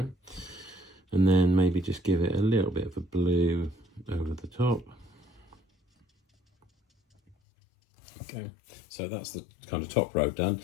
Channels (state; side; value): drops out; right; at 7.4 s